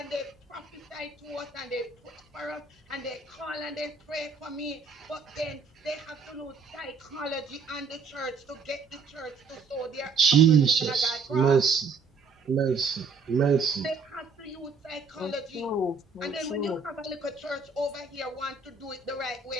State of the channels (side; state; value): left; quieter; 4.7 dB